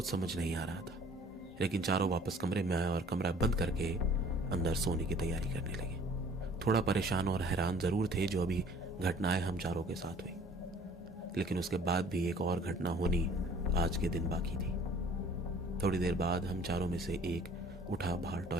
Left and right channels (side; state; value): both; normal; correlation 0.52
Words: समझ नहीं आ रहा था, लेकिन चारों वापस कमरे में आए और कमरा बंद करके अंदर सोने की तैयारी करने लगे। थोड़ा परेशान और हैरान जरूर थे जो अभी घटनाएं हम चारों के साथ हुई, लेकिन उसके बाद भी एक और घटना होनी आज के दिन बाकी थी। थोड़ी देर बाद हम चारों में से एक उठा बाहर